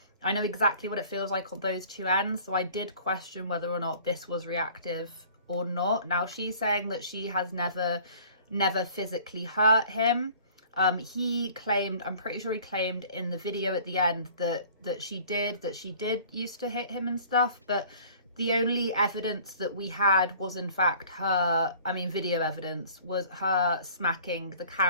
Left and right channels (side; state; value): both; inverted; correlation -0.51